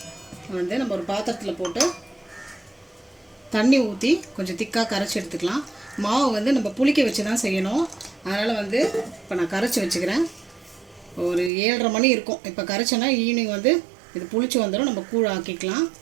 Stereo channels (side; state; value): left; drops out; at 11.5 s